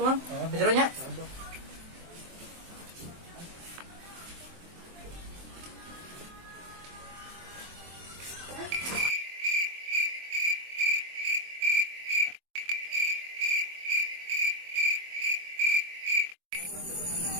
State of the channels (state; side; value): late; left; 23 ms